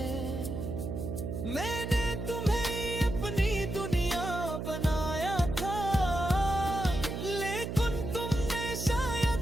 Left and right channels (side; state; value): right; noise; hum, 4 dB below the sound